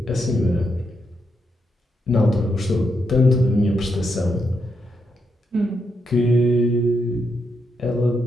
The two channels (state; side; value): normal; both; correlation 0.81